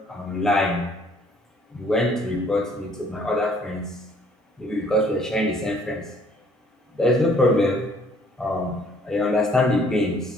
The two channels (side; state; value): both; normal; correlation 0.60